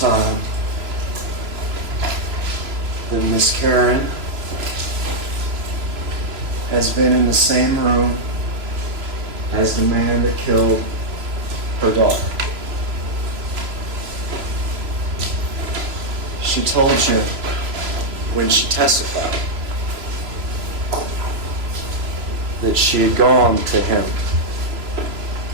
that Miss Karen has been in the same room as the man that killed her daughter. She told you when she testified that she had gone to him,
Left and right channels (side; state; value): left; late; 3.0 ms